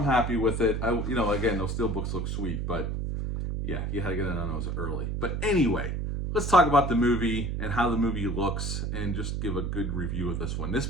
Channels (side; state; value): right; noise; hum, 1 dB below the sound